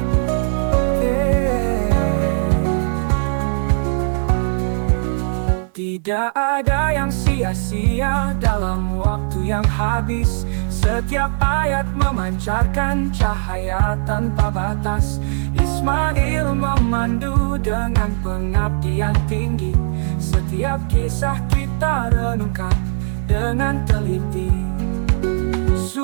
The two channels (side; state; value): left; silent; 56 dB below the other